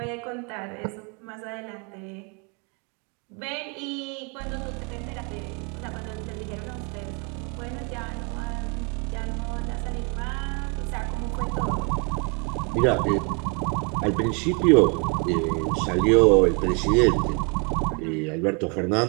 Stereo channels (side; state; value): left; quieter; 33.9 dB